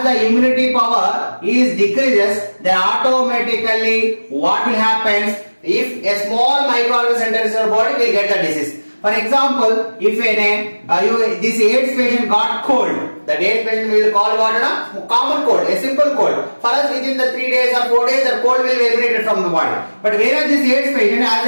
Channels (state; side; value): inverted; both; correlation -1.00